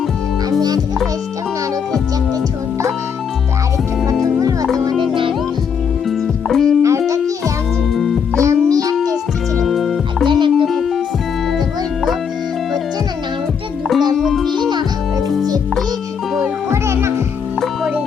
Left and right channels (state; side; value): quieter; right; 6.9 dB